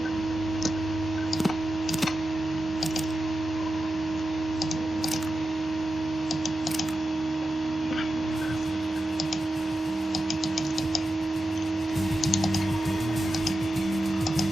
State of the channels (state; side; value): normal; both; correlation 0.90